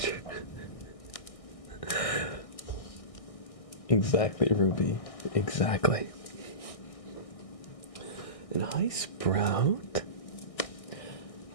Exactly, Ruby. Exactly. And hi, Sprout.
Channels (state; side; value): late; right; 1.6 ms